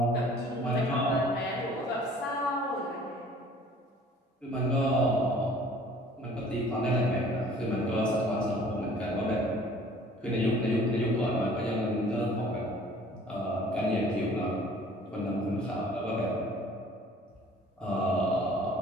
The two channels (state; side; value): normal; both; correlation 0.51